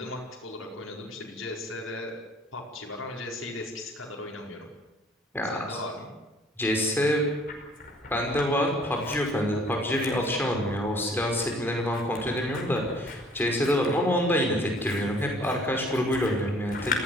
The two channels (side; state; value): both; normal; correlation 0.56